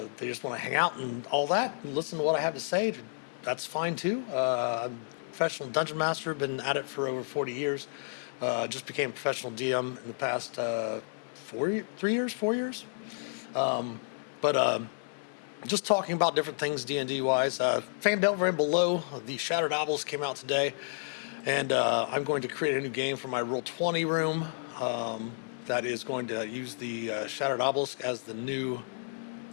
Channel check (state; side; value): silent; right; digital silence